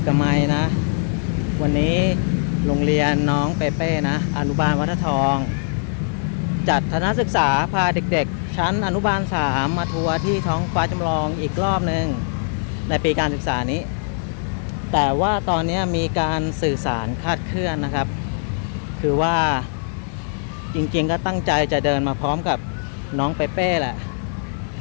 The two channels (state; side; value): silent; right; digital silence